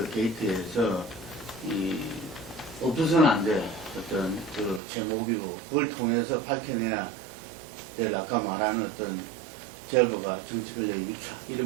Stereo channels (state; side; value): drops out; left; at 4.8 s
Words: 게이트에서 이 없어서는 안 될 어떤 그 제목이고 그걸 통해서 밝혀내야 될 아까 말하는 어떤 제보가 정치 권력 유착